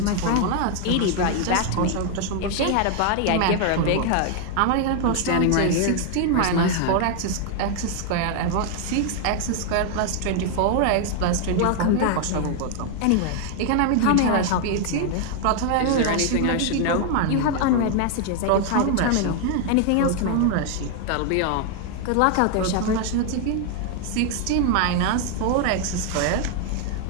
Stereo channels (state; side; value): different; both; correlation 0.00